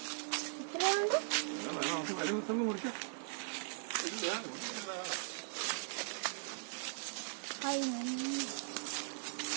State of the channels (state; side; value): silent; left; digital silence